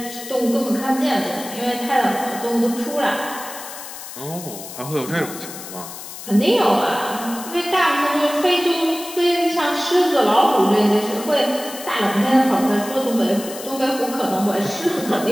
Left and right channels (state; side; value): noise; left; hiss, 12 dB below the sound